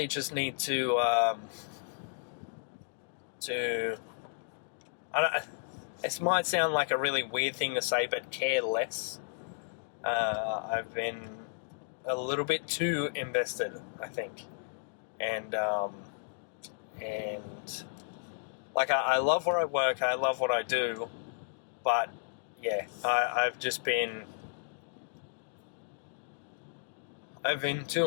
just need to this might sound like a really weird thing to say, but care less. I've been a little bit too invested, I think. And I love where I work, I love what I do, but I've been too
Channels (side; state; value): right; silent; digital silence